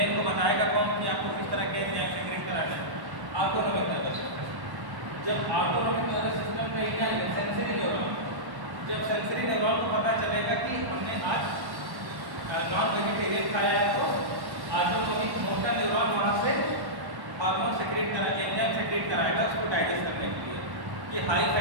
को बताएगा कौन कि आपको किस तरह के एंजाइम सेक्रेट कराना है, ऑटोनॉमिक नर्वस सिस्टम। जब ऑटोनॉमिक नर्वस सिस्टम का एरिया है सेंसरी न्यूरॉन, जब सेंसरी न्यूरॉन को पता चलेगा कि हमने आज नॉन वेजिटेरियन खाया है तो ऑटोनॉमिक मोटर न्यूरॉन वहाँ से हार्मोन सेक्रेट करा, एंजाइम सेक्रेट कराएगा उसको डाइजेस्ट करने के लिए, कि हाई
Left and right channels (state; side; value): late; left; 1.1 ms